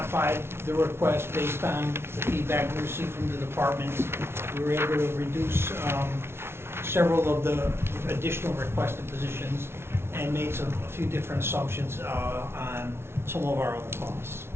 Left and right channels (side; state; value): left; late; 0.12 ms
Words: the request based on the feedback we received from the departments. We were able to reduce several of the additional requested positions and made a few different assumptions on some of our other costs.